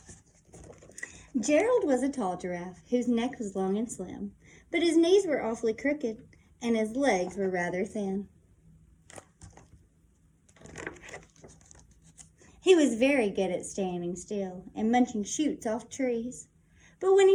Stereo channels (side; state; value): both; identical; correlation 1.00